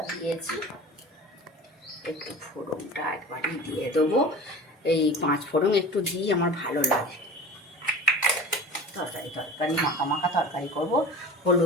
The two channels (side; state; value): both; normal; correlation 0.37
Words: দিয়েছি, একটু ফোড়নটা একবারই দিয়ে দেবো। এই 5 ফোড়ন একটু দিই, আমার ভালো লাগে। তরকারি মাখা মাখা তরকারি করবো।